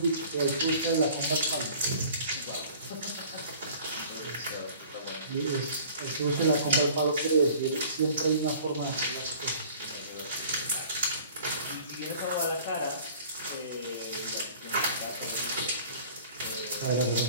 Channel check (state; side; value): inverted; both; correlation -0.49